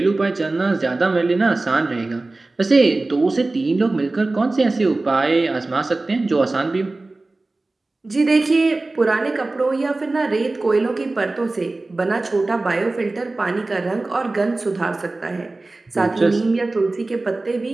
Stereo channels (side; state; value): left; quieter; 3.1 dB